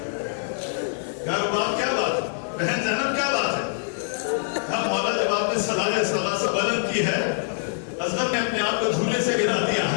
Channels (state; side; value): silent; right; digital silence